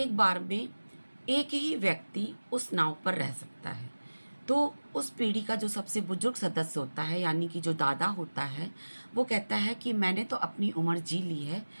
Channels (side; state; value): both; inverted; correlation -1.00